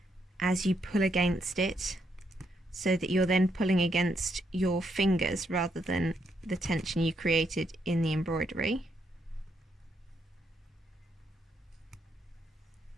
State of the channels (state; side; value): normal; both; correlation 0.77